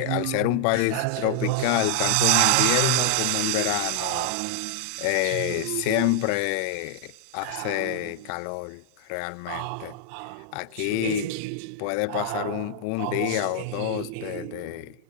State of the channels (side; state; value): both; different; correlation 0.00